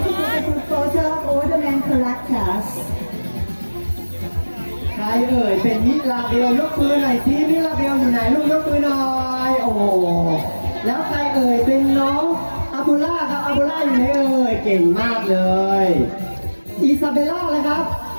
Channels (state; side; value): inverted; both; correlation -1.00